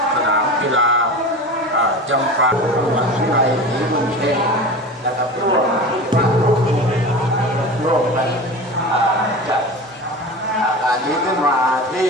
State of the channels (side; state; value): both; normal; correlation 0.31